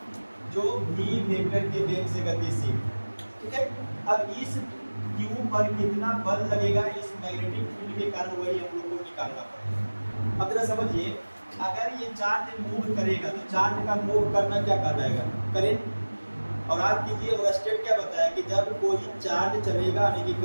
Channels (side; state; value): both; inverted; correlation -1.00